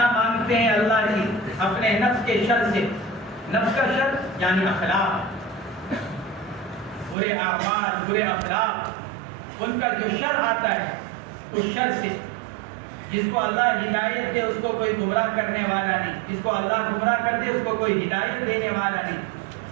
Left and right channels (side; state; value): left; drops out; at 7.2 s